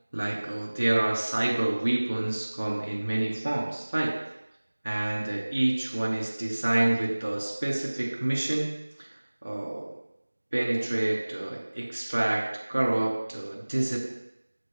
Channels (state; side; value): inverted; both; correlation -1.00